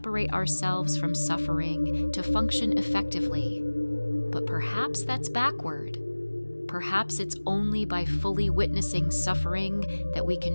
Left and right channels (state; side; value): inverted; both; correlation -1.00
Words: ourselves from suffering to function effectively. But perhaps that's backward. Perhaps it's only by fully witnessing suffering that we